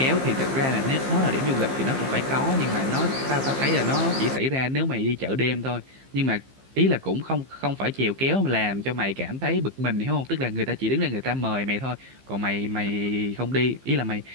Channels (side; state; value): left; late; 15 ms